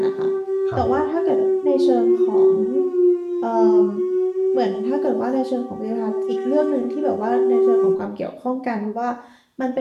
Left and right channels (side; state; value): both; identical; correlation 1.00